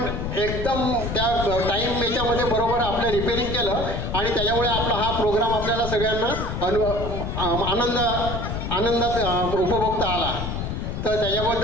एकदम त्या टाईम याच्यामध्ये बरोबर आपलं रिपेअरिंग केलं आणि त्याच्यामुळे आपला हा प्रोग्राम आपल्याला सगळ्यांना आनंदात उपभोगता आला. तर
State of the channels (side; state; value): left; noise; rumble, 4 dB below the sound